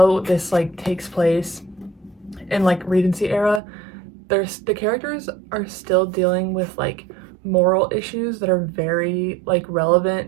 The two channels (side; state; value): left; drops out; at 3.6 s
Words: this like takes place in like Regency era, the characters are still dealing with like moral issues that are very like